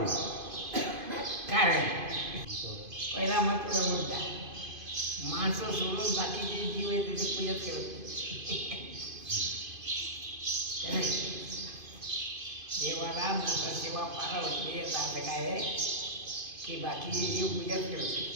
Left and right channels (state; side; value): late; left; 2.5 ms